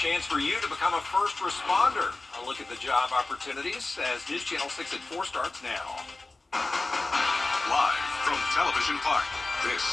for you to become a first responder. A look at the job opportunities as News Channel 6 at 4 starts now. Live from Television Park, this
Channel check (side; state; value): right; quieter; 3.2 dB